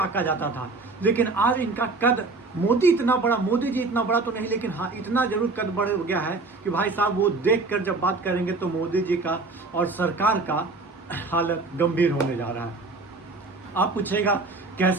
जाता था। लेकिन आज इनका कद, मोदी जी इतना बड़ा तो नहीं, लेकिन हाँ इतना जरूर कद बढ़ गया है कि भाई साहब वो देख कर जब बात करेंगे तो मोदी जी का और सरकार का हालत गंभीर होने जा रहा है। आप पूछेगा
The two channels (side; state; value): left; quieter; 3.6 dB